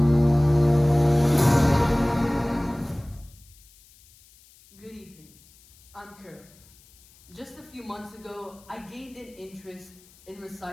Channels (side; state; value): left; noise; hiss, 27 dB below the sound